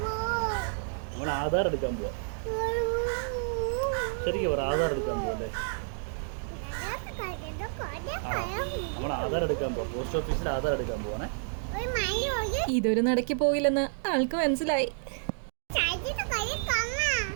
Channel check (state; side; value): silent; left; digital silence